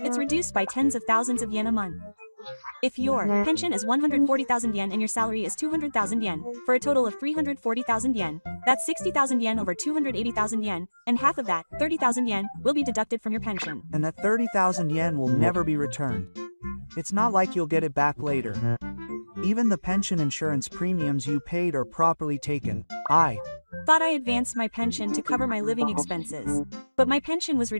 reduced by tens of thousands of yen a month. If your pension is 140,000 yen and your salary is 200,000 yen, for a total of 340,000 yen, that's 60,000 yen over 280,000 yen, and half of that, 30,000 yen, will be deducted from your pension. And that 30,000 yen will never be returned. It's not like you'll get it back later. Even the pension insurance premiums you paid are properly taken. I thought I advanced my pension to cover my living expenses. But my pension was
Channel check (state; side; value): inverted; both; correlation -1.00